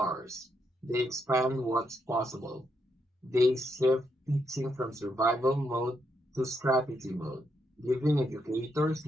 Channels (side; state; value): both; normal; correlation 0.79